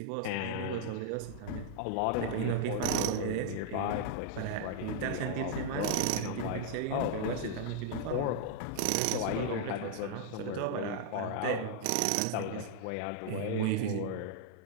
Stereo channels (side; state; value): both; different; correlation -0.01